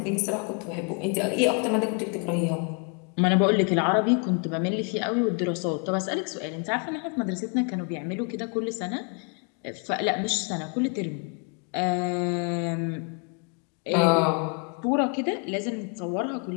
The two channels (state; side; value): quieter; right; 37.5 dB